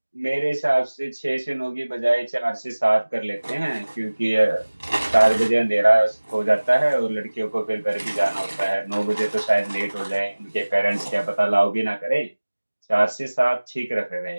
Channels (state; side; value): inverted; both; correlation -1.00